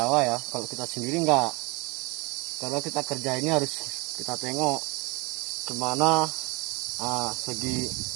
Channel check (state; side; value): quieter; left; 26.3 dB